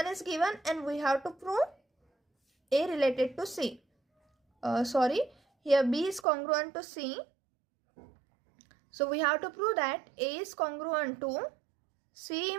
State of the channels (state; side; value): drops out; left; at 6.2 s